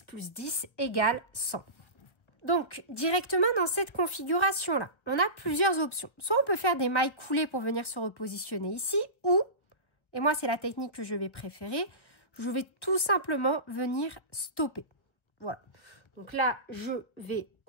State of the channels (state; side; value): late; right; 1.4 ms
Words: égale 100. Donc, directement dans cette configuration-là, on a plusieurs options. Soit on peut faire des mailles coulées pour venir se repositionner ici, ou, et moi c'est la technique que je vais préférer, je vais tout simplement venir stopper. Voilà. Donc là, je vais